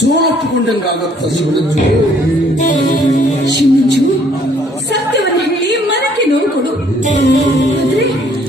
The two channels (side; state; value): both; normal; correlation 0.63